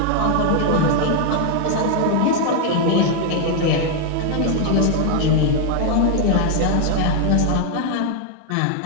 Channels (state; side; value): different; both; correlation 0.00